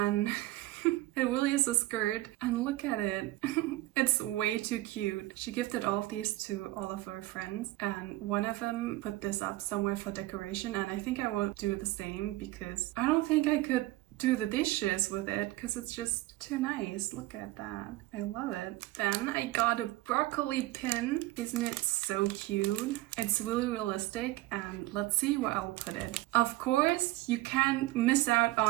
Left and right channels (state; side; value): quieter; left; 18.1 dB